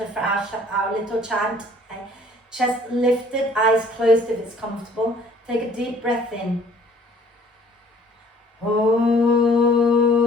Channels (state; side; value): normal; both; correlation 0.56